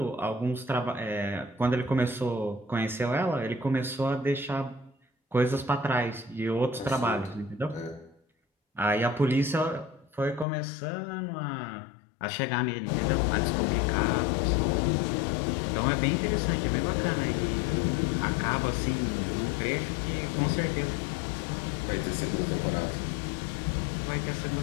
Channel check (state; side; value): drops out; right; at 10.5 s